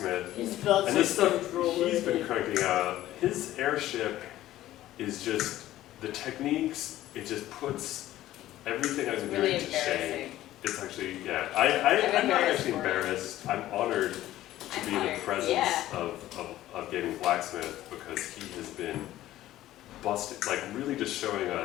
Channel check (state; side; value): quieter; right; 14.4 dB